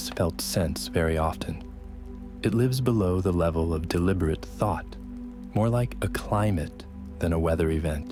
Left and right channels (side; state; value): both; identical; correlation 1.00